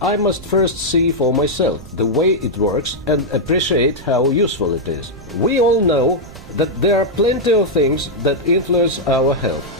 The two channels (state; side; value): noise; right; rumble, 17 dB below the sound